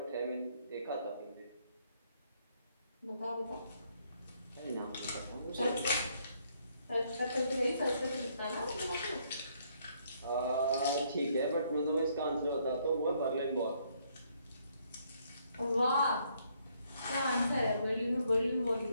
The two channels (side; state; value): both; inverted; correlation -0.70